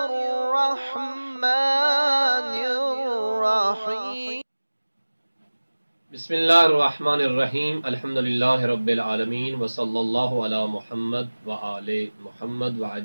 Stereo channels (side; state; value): both; inverted; correlation -1.00